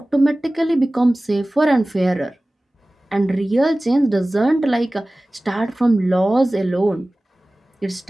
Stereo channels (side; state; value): both; normal; correlation 0.98